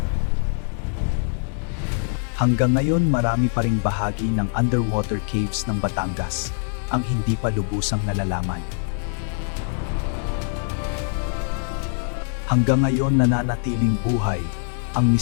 Hanggang ngayon marami pa ring bahagi ng underwater caves ng Batangas ang hindi pa lubusang nalalaman. Hanggang ngayon nananatiling buhay ang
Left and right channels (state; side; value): silent; right; digital silence